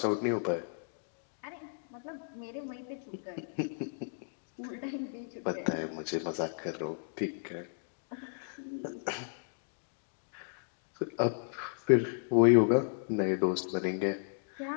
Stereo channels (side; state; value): right; silent; digital silence